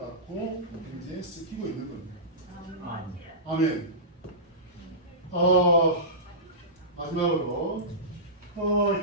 현재 쓰이고 있는 겁니다. 아멘. 마지막으로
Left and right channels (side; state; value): both; normal; correlation -0.20